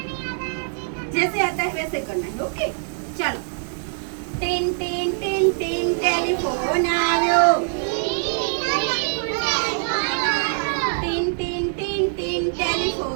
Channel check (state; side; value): silent; left; digital silence